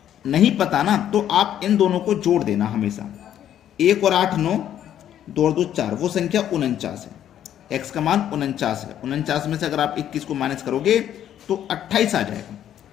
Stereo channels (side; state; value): right; quieter; 10.7 dB